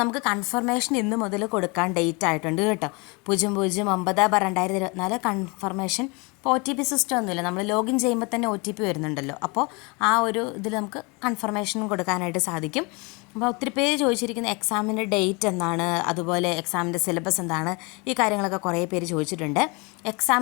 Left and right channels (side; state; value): right; quieter; 28.8 dB